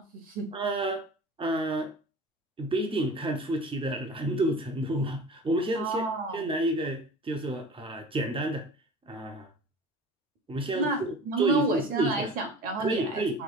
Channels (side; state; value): both; normal; correlation 0.40